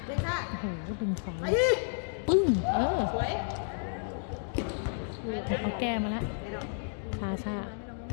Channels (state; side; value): silent; right; digital silence